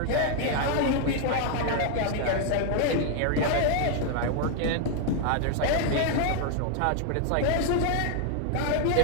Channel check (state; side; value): different; both; correlation 0.00